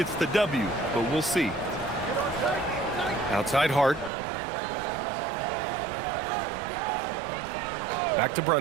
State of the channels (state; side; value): drops out; left; at 4.1 s